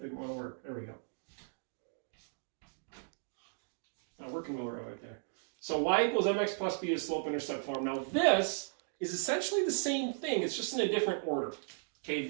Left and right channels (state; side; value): silent; left; digital silence